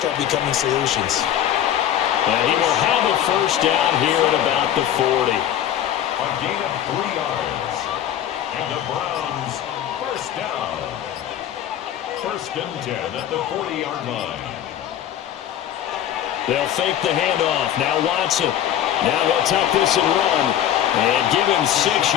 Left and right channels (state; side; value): quieter; right; 11.0 dB